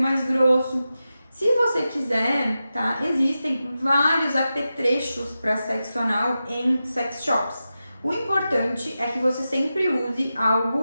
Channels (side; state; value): both; inverted; correlation -0.92